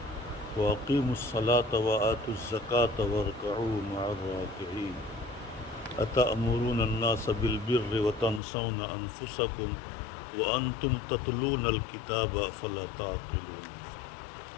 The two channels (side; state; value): right; drops out; at 8.4 s